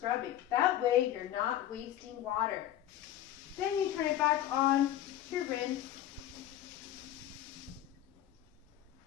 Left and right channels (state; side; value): quieter; right; 12.4 dB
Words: That way you're not wasting water. Then you turn it back on to rinse.